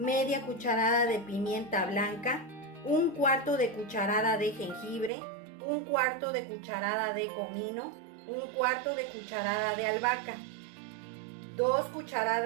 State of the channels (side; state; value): left; drops out; at 5.1 s